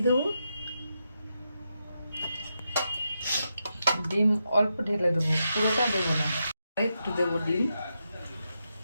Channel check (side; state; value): both; inverted; correlation -0.85